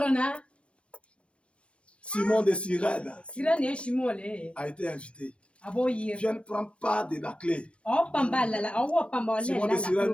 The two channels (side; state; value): right; late; 0.060 ms